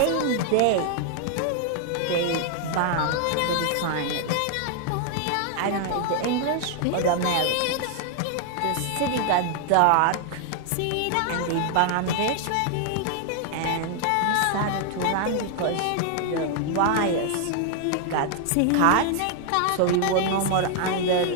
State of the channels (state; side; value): different; both; correlation 0.00